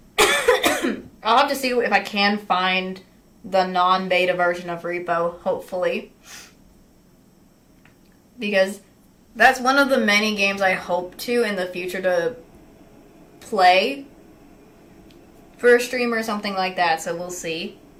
I'll have to see if I can find the non-beta version of Repo, hopefully. because that's one of the many games I hope to in the future to play for a stream or something like that, so we'll see.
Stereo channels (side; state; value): both; identical; correlation 1.00